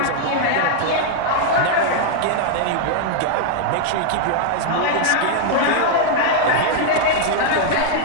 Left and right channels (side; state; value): both; different; correlation 0.00